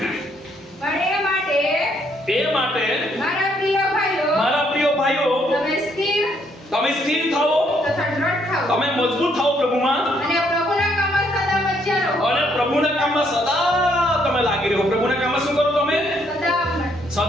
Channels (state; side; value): normal; both; correlation 0.70